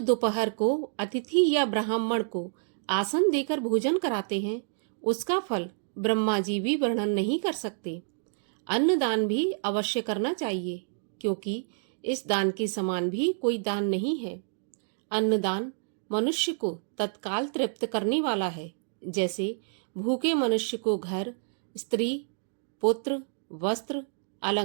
दोपहर को अतिथि या ब्राह्मण को आसन देकर भोजन कराते हैं, उसका फल ब्रह्मा जी भी वर्णन नहीं कर सकते। अन्नदान भी अवश्य करना चाहिए, क्योंकि इस दान के समान भी कोई दान नहीं है। अन्नदान मनुष्य को तत्काल तृप्त करने वाला है। जैसे भूखे मनुष्य को घर, स्त्री, पुत्र, वस्त्र,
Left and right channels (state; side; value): silent; left; digital silence